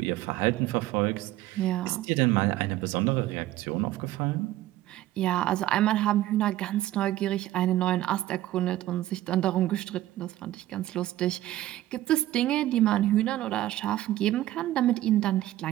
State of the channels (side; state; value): left; quieter; 14.9 dB